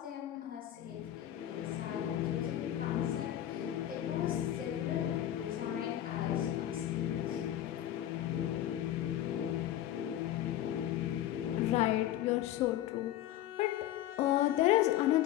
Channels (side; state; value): right; quieter; 12.7 dB